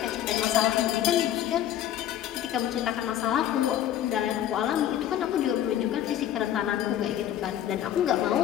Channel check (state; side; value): quieter; right; 11.3 dB